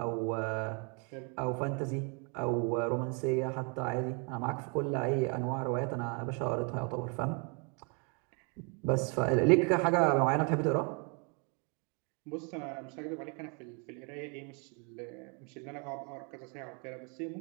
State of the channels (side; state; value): left; quieter; 35.5 dB